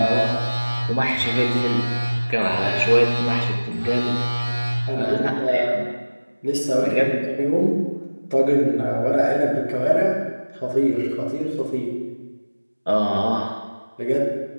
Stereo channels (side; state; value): both; inverted; correlation -1.00